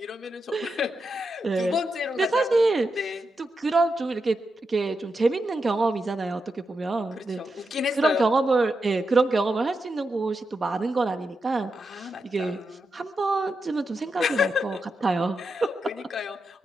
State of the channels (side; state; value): both; normal; correlation 0.87